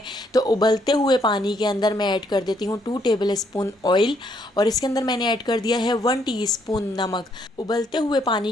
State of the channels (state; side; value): normal; both; correlation 0.71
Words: तो उबलते हुए पानी के अंदर मैं ऐड कर देती हूँ 2 टेबल स्पून ऑयल, और इसके अंदर मैंने ऐड कर दिया है 1 टीस्पून नमक। उबलते हुए